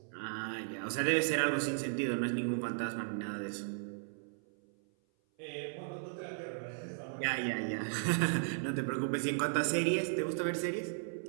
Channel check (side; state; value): left; silent; 54 dB below the other